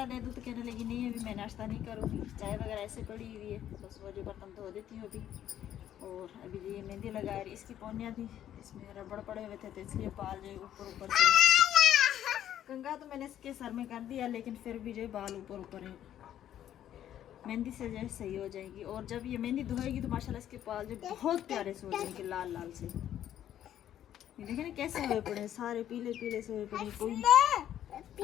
दे दूँ तो कहने लगी नहीं अभी मैं नाश्ता नहीं करूँगी, चाय वगैरह ऐसे पड़ी हुई है, बस वो जो बर्तन धो देती हूँ अभी। और अभी ये मेहंदी लगा रही। इसकी पौनियाँ थी, इसमें रबड़ पड़े हुए थे तो इसलिए बाल जो ऊपर ऊपर से कंघा तो मैंने इसके सर में कर दिया, लेकिन फिर भी जो बाल ऊपर ऊपर है। मेहंदी से जो सही हो जाएगी। और जब ये मेहंदी धोएगी तो माशाल्लाह इसके बाल जो बहुत प्यारे से हो जाएंगे, लाल लाल से। ये देखें ना कैसे हुए पड़े, सारे पीले पीले से हुए पड़े। कोई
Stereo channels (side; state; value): right; quieter; 11.1 dB